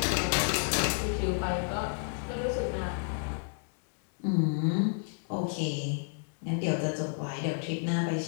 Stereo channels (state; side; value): silent; right; 57 dB below the other